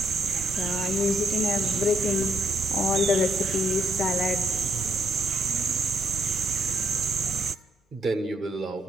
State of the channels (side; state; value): both; normal; correlation 0.74